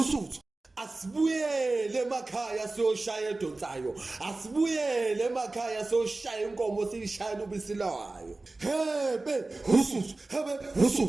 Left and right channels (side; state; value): left; quieter; 3.2 dB